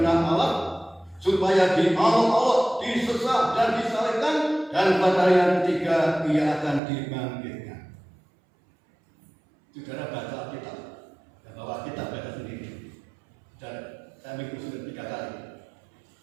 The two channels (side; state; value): left; drops out; at 6.8 s